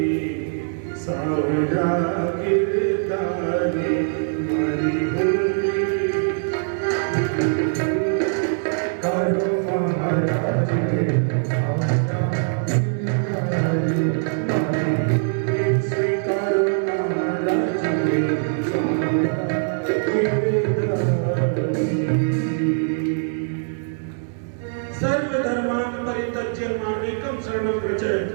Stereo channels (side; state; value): left; silent; 64 dB below the other